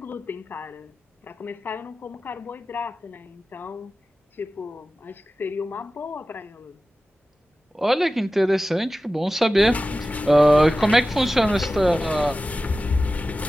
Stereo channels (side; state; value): both; normal; correlation 0.95